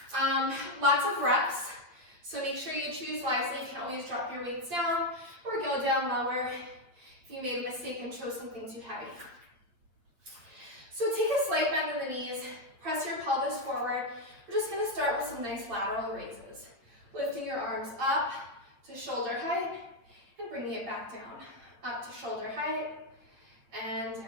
Lots of reps. So make sure you choose wisely. You can always drop your weights down or go down lower if you made a mistake and chose something too heavy. So take a slight bend in the knees, press your pelvis forward. We're just going to start with some nice lateral raises. Lifting your arms up to shoulder height and bringing it back down. Up to shoulder height and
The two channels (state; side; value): late; left; 8.9 ms